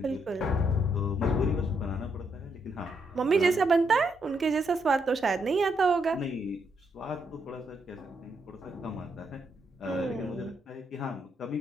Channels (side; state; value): both; normal; correlation 0.78